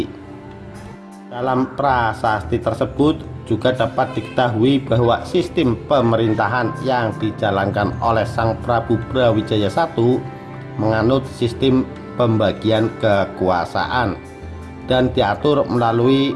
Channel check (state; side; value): identical; both; correlation 1.00